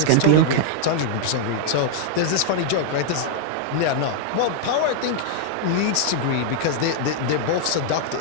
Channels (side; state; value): both; different; correlation -0.01